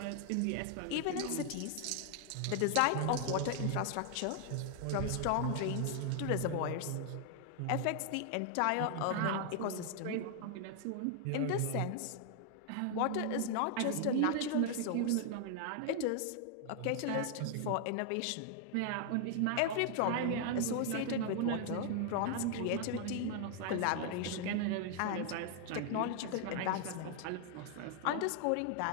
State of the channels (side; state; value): both; different; correlation 0.00